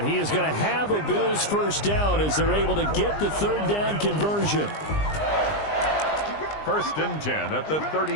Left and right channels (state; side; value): late; right; 20 ms